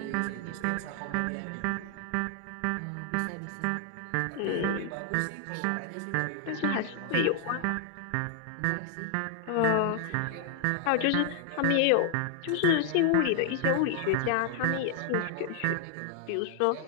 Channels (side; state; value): both; different; correlation 0.00